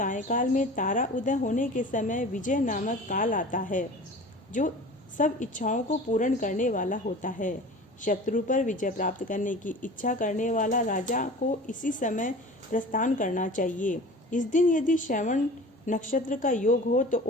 में तारा उदय होने के समय विजय नामक काल आता है, जो सब इच्छाओं को पूर्ण करने वाला होता है। शत्रु पर विजय प्राप्त करने की इच्छा करने वाला राजा को इसी समय प्रस्थान करना चाहिए। इस दिन यदि श्रवण नक्षत्र का योग हो तो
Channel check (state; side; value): normal; both; correlation 0.39